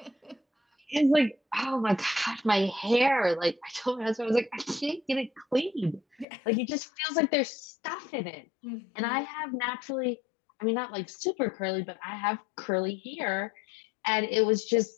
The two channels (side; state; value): right; drops out; at 6.2 s